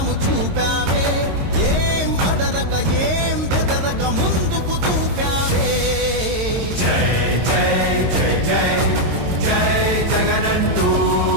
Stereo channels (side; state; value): left; late; 22 ms